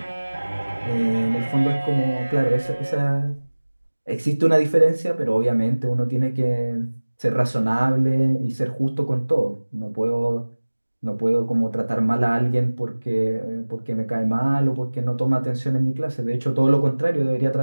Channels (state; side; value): inverted; both; correlation -1.00